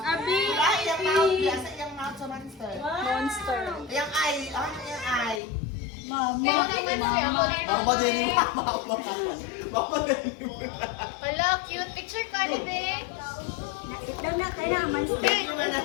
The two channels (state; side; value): drops out; right; at 5.4 s